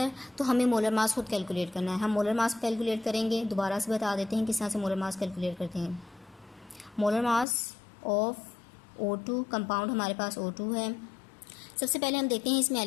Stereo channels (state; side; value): drops out; right; at 7.5 s